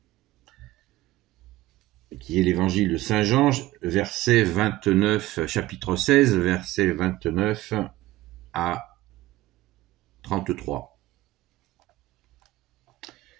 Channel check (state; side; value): quieter; left; 17.1 dB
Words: qui est l'évangile de Saint Jean, verset 29, chapitre 16, verset 29 à 33.